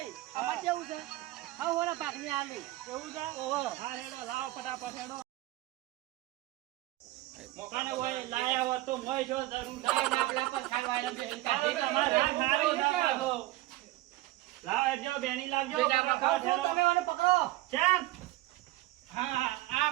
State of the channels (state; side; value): quieter; left; 17.6 dB